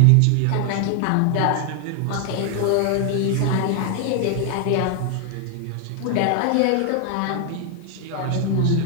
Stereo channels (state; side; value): different; both; correlation 0.00